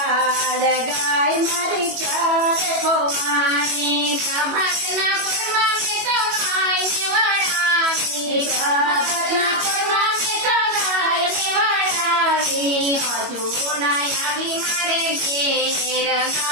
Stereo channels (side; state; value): left; late; 21 ms